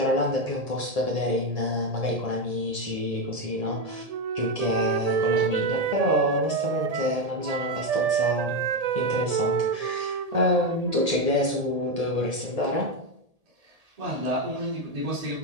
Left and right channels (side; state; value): left; late; 1.8 ms